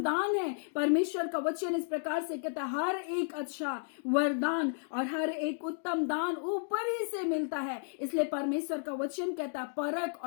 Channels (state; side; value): silent; right; digital silence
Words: दान है, परमेश्वर का वचन इस प्रकार से कहता है, हर एक अच्छा वरदान और हर एक उत्तम दान ऊपर ही से मिलता है। इसलिए परमेश्वर का वचन कहता है, परख